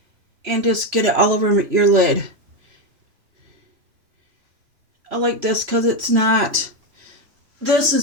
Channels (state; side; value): late; left; 3.0 ms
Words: and just get it all over your lid. I like this because it's not... This